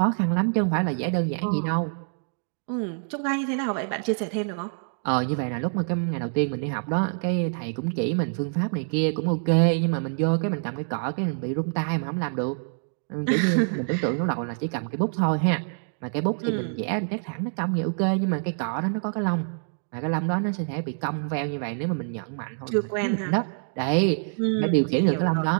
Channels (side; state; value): left; silent; digital silence